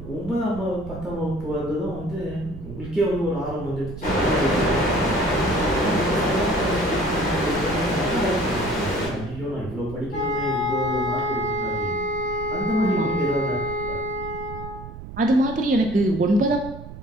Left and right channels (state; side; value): noise; right; rumble, 12 dB below the sound